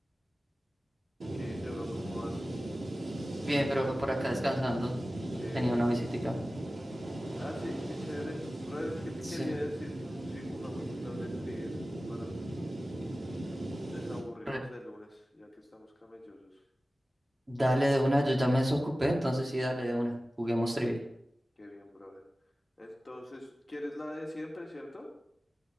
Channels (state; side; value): normal; both; correlation 0.96